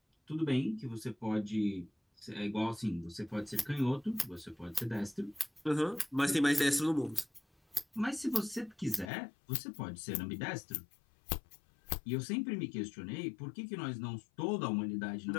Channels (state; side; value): drops out; right; at 9.1 s